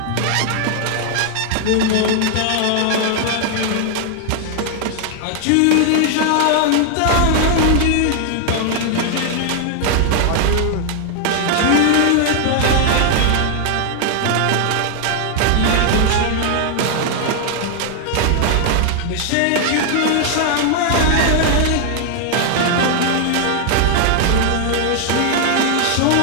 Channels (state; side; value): different; both; correlation 0.00